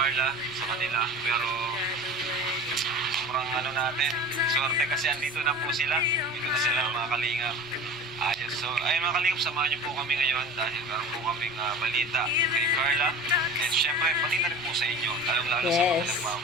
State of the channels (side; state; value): right; noise; rumble, 24 dB below the sound